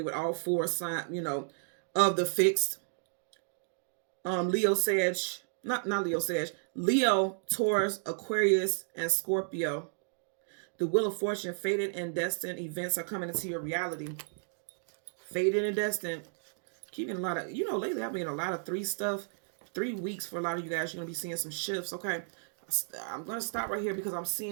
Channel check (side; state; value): left; silent; digital silence